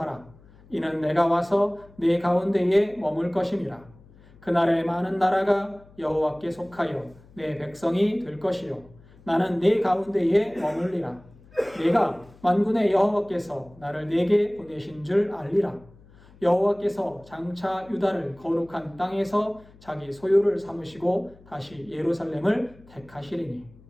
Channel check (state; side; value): noise; left; hum, 25 dB below the sound